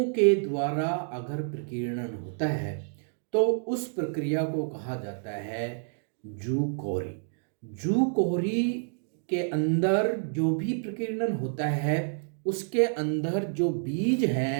के द्वारा अगर प्रकीर्णन होता है तो उस प्रक्रिया को कहा जाता है जू क्वेरी। जू क्वेरी के अंदर जो भी प्रकीर्णन होता है उसके अंदर जो बीज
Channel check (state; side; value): silent; left; digital silence